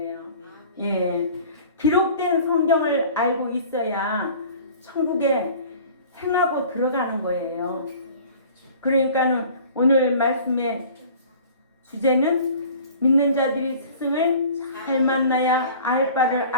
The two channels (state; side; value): inverted; both; correlation -0.45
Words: 예. 기록된 성경을 알고 있어야 천국에 행하고 들어가는 거예요. 그러니까는 오늘 말씀의 주제는 믿는 자들이 스승을 잘 만나야 알 바를